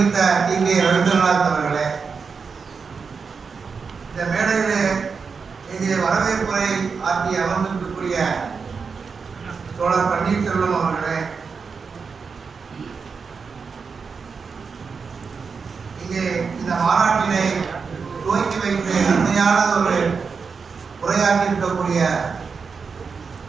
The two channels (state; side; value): quieter; left; 5.3 dB